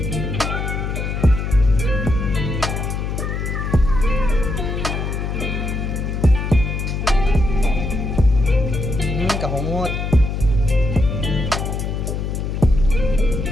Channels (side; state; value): left; noise; hum, 2 dB below the sound